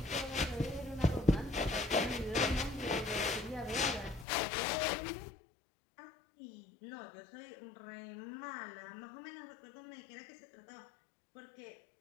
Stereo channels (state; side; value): drops out; right; at 4.2 s